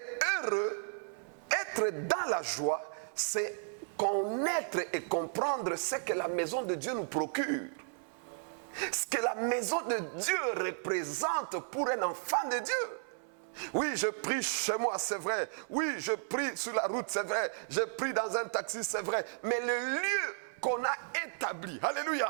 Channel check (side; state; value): left; silent; 55 dB below the other